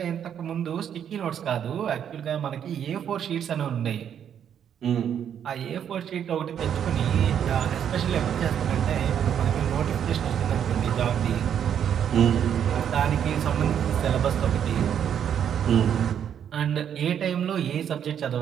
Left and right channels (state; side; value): quieter; left; 8.9 dB